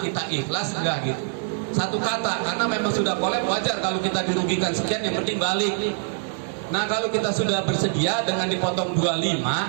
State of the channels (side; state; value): left; silent; digital silence